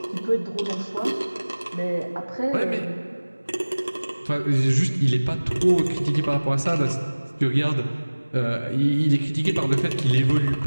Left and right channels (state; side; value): inverted; both; correlation -1.00